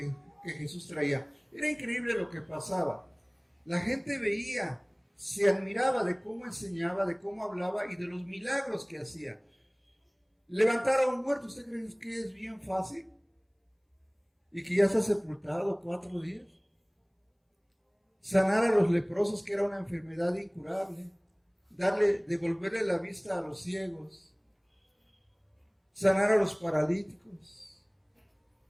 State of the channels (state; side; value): identical; both; correlation 1.00